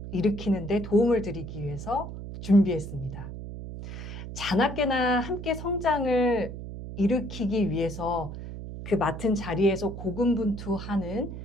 일으키는 데 도움을 드리기 위해서 준비했습니다. 자나깨나 함께 성장을 일으키기 위해서 그 맡은 자리에서 고군분투하는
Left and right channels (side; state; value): right; noise; hum, 9 dB below the sound